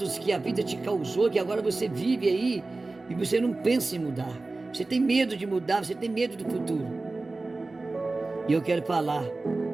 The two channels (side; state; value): left; quieter; 3.3 dB